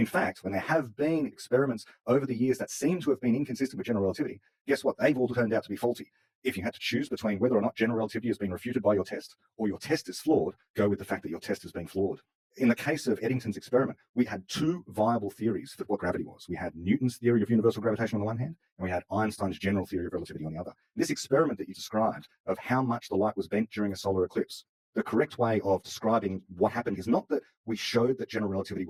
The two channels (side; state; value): both; identical; correlation 1.00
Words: fact, when there have been experiments over the years that seem to have been inconsistent with general relativity, guess what? They've all turned out to be faulty. If you had to choose between whether or not general relativity has been refuted by your test or your test is flawed, go with the fact that your test has been flawed. In the case of Eddington's experiment, we had two viable theories for what gravity was. We had Newton's theory of universal gravitation on the one hand, and we had Einstein's general theory of relativity on the other. This experiment that you described of how much the light was bent during a solar eclipse, the correct way of describing what happened is not that we showed that general relativity